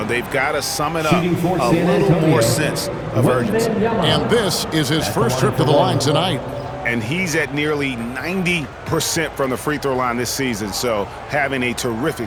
They've got to sum it up a little more sense of urgency. And this is his first trip to the line tonight. And he's at nearly 90% from the free throw line this season, so having a terrific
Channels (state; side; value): identical; both; correlation 1.00